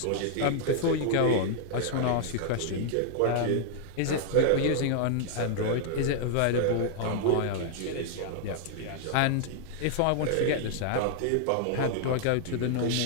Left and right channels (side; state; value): both; different; correlation -0.01